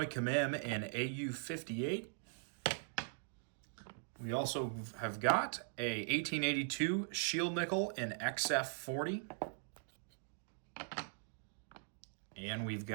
Commem in AU58. We also have got a 1882 Shield Nickel in XF40. And we've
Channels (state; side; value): silent; left; digital silence